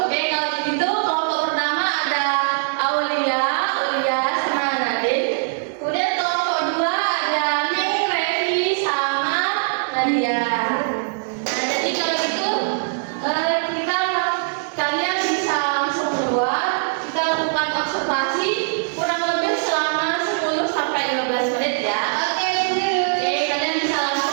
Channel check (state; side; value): silent; left; 58 dB below the other